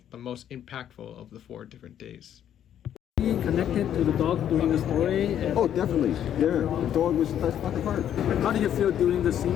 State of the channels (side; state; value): right; quieter; 10.2 dB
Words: the most impactful of the 4 different days. Connected to the dog during the story. Oh, definitely. Yeah, the dog was the best part of the part. How did you feel during the